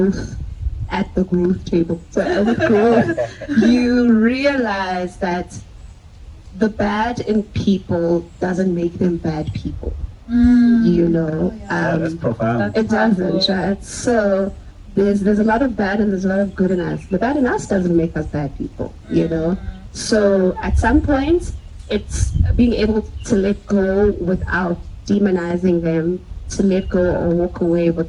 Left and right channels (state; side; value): identical; both; correlation 1.00